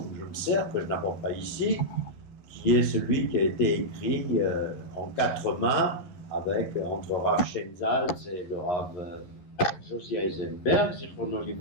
je me sers, que je n'apporte pas ici, qui est celui qui a été écrit en 4 mains, avec, entre Rav Shenzalz et le Rav Josie Eisenberg, Zichrono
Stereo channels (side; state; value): right; late; 11 ms